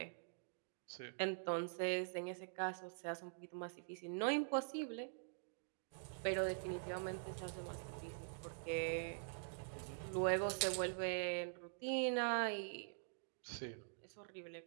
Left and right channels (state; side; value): silent; left; digital silence